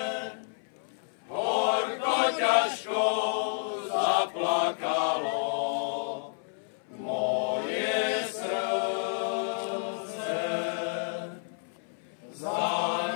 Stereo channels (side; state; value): right; silent; 58 dB below the other